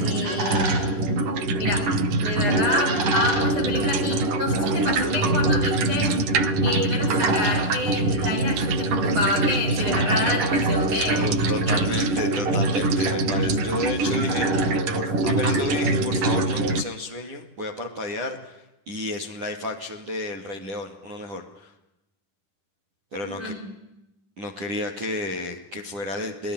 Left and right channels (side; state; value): left; late; 10 ms